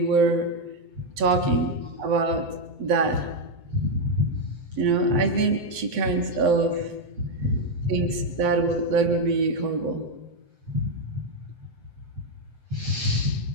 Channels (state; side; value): late; left; 7.9 ms